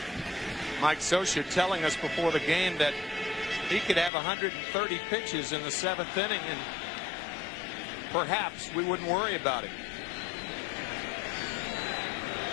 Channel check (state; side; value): drops out; right; at 4.1 s